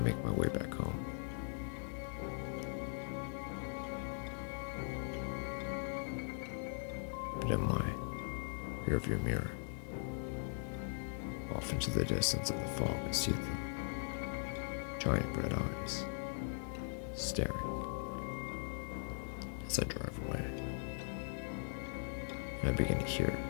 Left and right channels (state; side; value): silent; right; digital silence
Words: make my way back home. But in my rearview mirror, off into the distance of the fog, I see the giant red eyes staring as I drive away. And I begin to hear